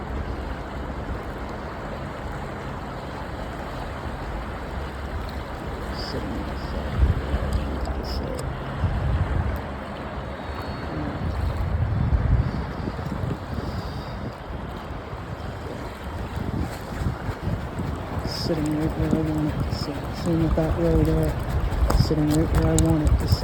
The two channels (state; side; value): identical; both; correlation 1.00